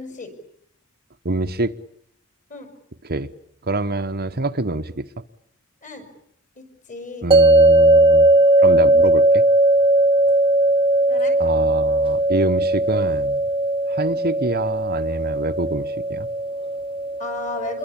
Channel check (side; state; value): both; normal; correlation 0.41